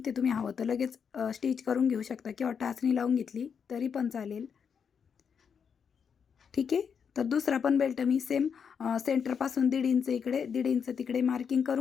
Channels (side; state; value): right; quieter; 6.8 dB